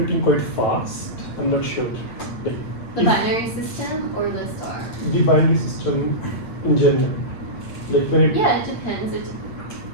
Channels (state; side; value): late; right; 8.7 ms